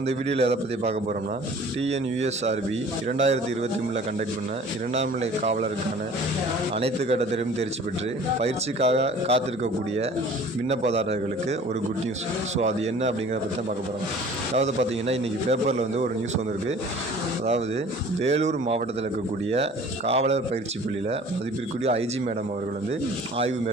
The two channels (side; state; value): both; normal; correlation 0.48